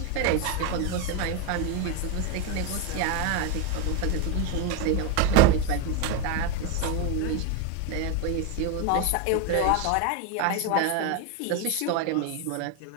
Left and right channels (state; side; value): different; both; correlation 0.02